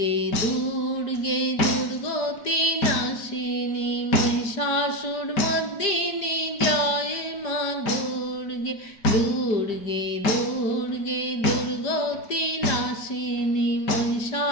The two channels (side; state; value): right; late; 5.0 ms